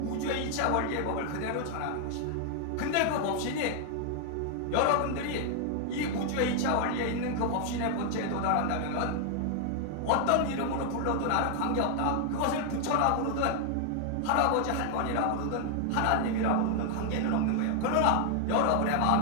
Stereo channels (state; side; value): different; both; correlation 0.00